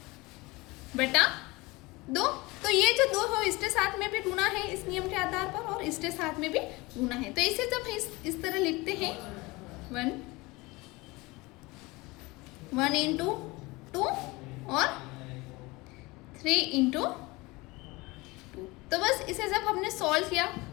बटा 2। तो ये जो 2 हो इसके साथ में भी गुना है इस नियम के आधार पर, और इसके साथ में भी गुना है। तो इसे जब इस तरह लिखते हैं 1 इंटू 2 और 3 इंटू 2, तो बस इसे जब हमने सॉल्व किया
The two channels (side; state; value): right; quieter; 23.0 dB